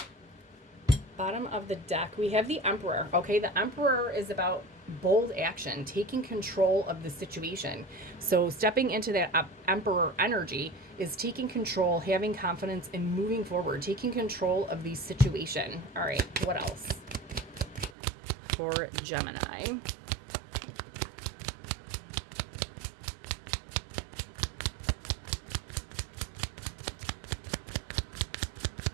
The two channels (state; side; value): drops out; left; at 17.9 s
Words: Bottom of the deck, we have the Emperor. Okay, the Emperor is about bold action, taking control of the situation. So stepping into that Emperor energy is taking control, having confidence, and moving forward, taking control of the situation. All right, what else for Gemini?